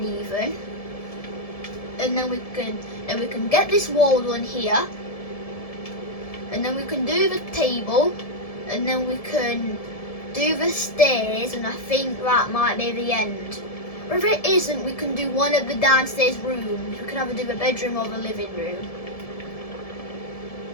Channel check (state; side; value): late; right; 1.7 ms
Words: And then we can get this wall on here, and then we can do the table, and then we can do the stairs, and I think that might be the end. Or if it isn't, we can do one of the downstairs rooms. We can either do the bedroom or the living room.